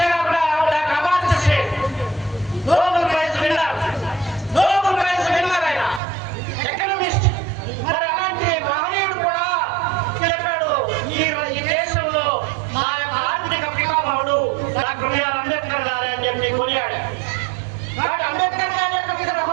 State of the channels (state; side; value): drops out; left; at 6.0 s